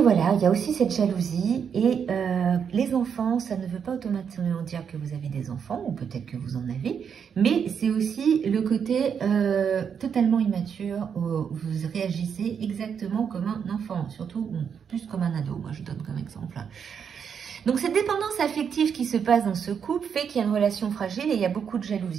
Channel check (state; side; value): quieter; left; 7.2 dB